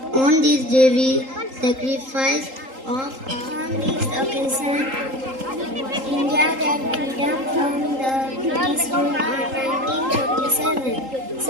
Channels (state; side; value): late; left; 3.8 ms